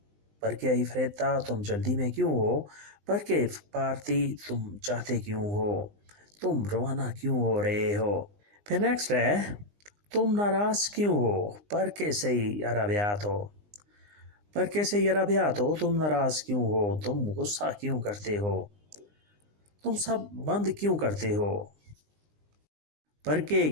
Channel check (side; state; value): left; late; 20 ms